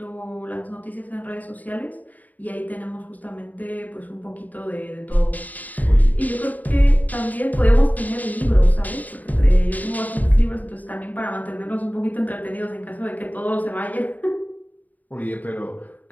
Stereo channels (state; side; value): late; right; 0.079 ms